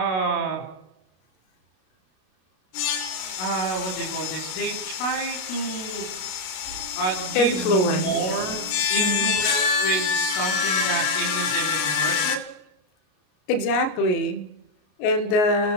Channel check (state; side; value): late; right; 33 ms